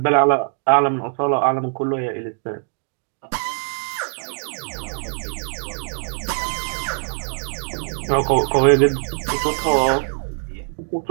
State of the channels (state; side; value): silent; left; digital silence